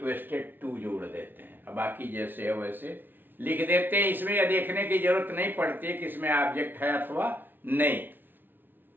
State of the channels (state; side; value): late; left; 0.094 ms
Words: टू जोड़ देते हैं। अब बाकी जैसे है वैसे लिख देते हैं। इसमें यह देखने की जरूरत नहीं पड़ती है कि इसमें ऑब्जेक्ट है अथवा नहीं।